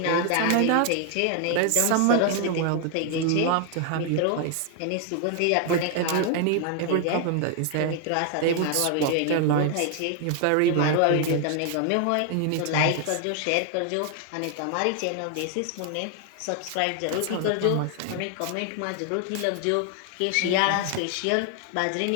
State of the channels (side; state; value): both; different; correlation 0.00